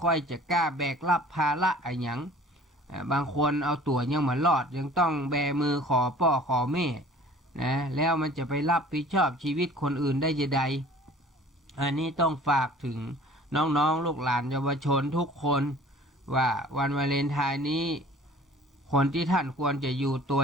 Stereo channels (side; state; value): both; normal; correlation 0.49